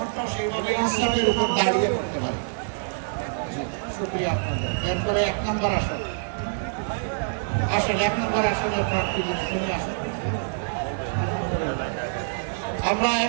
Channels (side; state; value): left; silent; 61 dB below the other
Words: সেইভাবে ইসলামের উপর দাঁড়িয়ে করতে পারি। শুক্রিয়া আপনাদের। এরপরে 1 নম্বর আসন আসেন, 1 নম্বর আসনের প্রার্থী শুনে আসেন। আলহামদুলিল্লাহ, আমরা